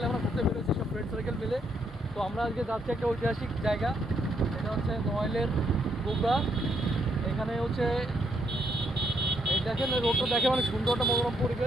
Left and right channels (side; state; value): both; normal; correlation 0.74